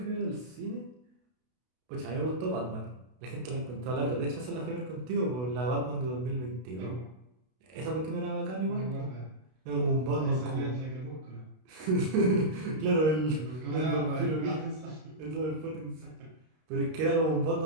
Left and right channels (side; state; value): left; late; 32 ms